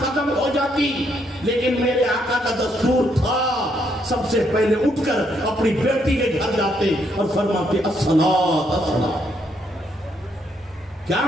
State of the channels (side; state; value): both; normal; correlation 0.74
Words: ختم ہو جاتی, لیکن میرے آقا کا دستور تھا سب سے پہلے اٹھ کر اپنی بیٹی کے گھر جاتے اور فرماتے الصلاۃ الصلاۃ. کیا